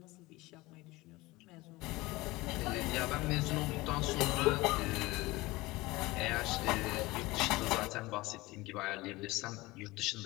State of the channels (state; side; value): quieter; right; 20.7 dB